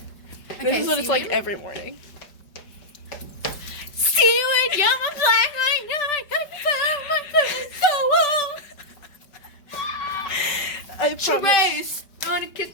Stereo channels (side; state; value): right; late; 5.1 ms